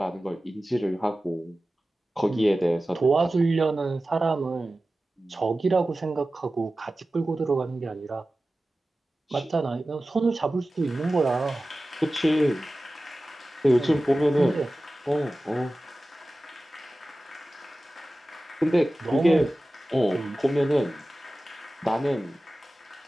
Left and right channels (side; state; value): both; normal; correlation 0.96